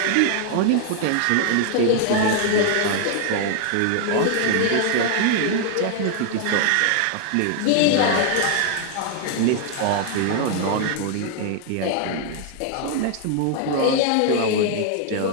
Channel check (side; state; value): both; different; correlation 0.00